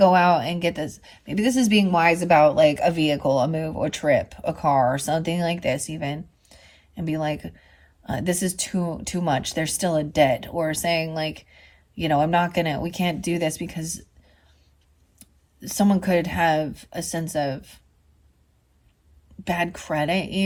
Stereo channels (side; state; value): both; identical; correlation 1.00